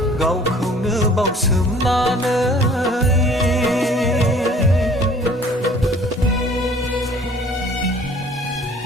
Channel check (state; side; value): normal; both; correlation 0.52